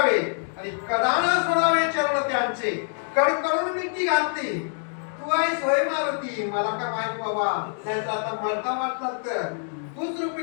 आणि कदान सोडावे चरण त्यांचे. कडकडून मिठी घातली. तू आहेस होय मारुती, मला का माहित बाबा. त्यांचा आता मरता वाटला तर तूच रूप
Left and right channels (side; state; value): right; silent; 57 dB below the other